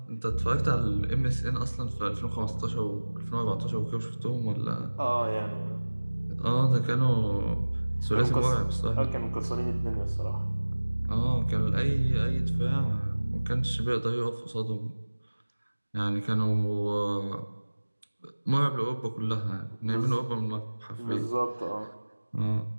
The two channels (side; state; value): both; inverted; correlation -1.00